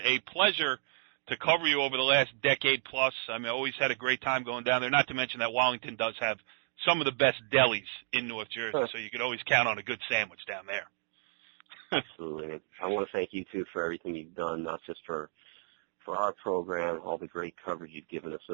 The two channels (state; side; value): silent; left; digital silence